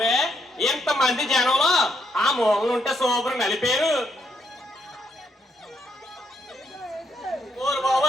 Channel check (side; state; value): both; normal; correlation 0.75